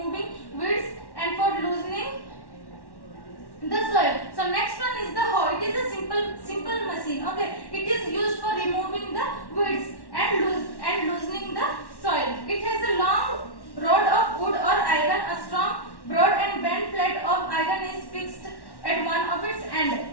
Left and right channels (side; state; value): right; late; 1.1 ms